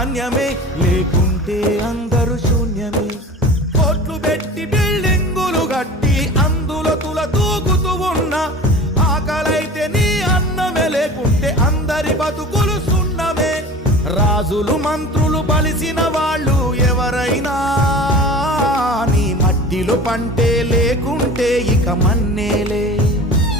లేకుంటే అందరూ శూన్యమే. కోట్లు పెట్టి బిల్డింగులు కట్టి అందులో తుల దూకుతూ ఉన్నా ఆకలైతే నీ అన్నమే, లేకుంటే అందరి బతుకులు సున్నమే. రాజులు మంత్రులు బలిసిన వాళ్ళు ఎవరైనా నీ మట్టిలో పంటే, లేకుంటే ఇక మన్నేలే.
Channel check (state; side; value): normal; both; correlation 0.38